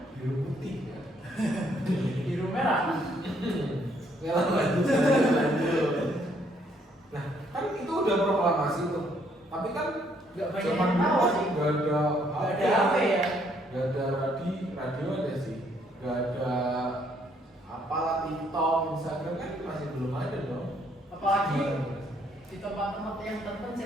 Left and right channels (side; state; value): both; normal; correlation 0.69